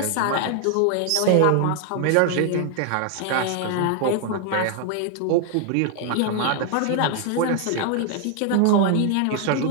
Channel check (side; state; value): both; different; correlation 0.00